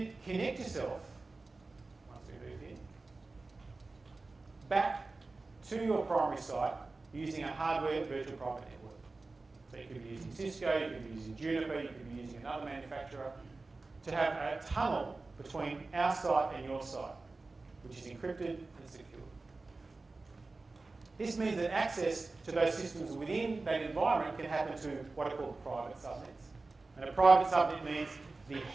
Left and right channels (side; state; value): left; quieter; 3.5 dB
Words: connect yourself, once we move in, back to your primary site using a hardware virtual private network. So you could be using Cisco, you could be using Juniper, you could be using another manufacturer to have a tunnel between our site and your site, which is encrypted and secure. This means that access to those systems within that environment can happen to what are called private subnets. And a private subnet means the